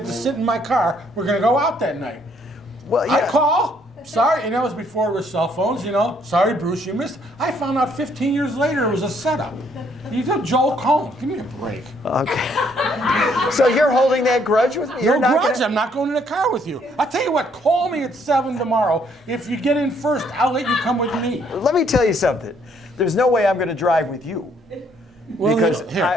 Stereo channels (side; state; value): both; normal; correlation 0.67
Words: to sit in my car. We're going to go out that night. Well, yeah. I call. Sorry, and that was before there were cell phones, you know. Sorry, Bruce, you missed. I found out 15 years later it was a setup. You told Joel Cohn. Give me a break. Okay. So you're holding that grudge with me? No grudge. I'm not going in the car with you. I'll tell you what. Call me at 7 tomorrow. If you get in first, I'll let you come with me. Let me tell you something. There's no way I'm going to drive with you. Well, because